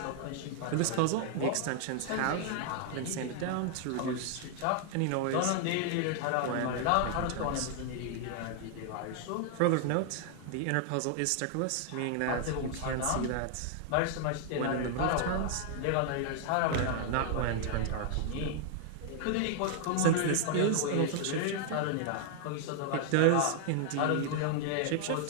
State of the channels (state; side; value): different; both; correlation 0.00